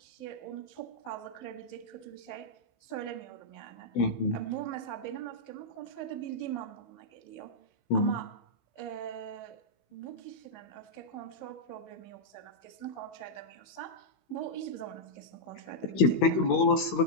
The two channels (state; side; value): late; right; 16 ms